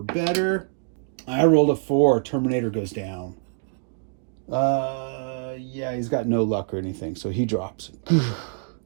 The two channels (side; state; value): left; silent; digital silence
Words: better. I rolled a 4. Terminator goes down. Yeah, he's got no luck or anything, so he drops. But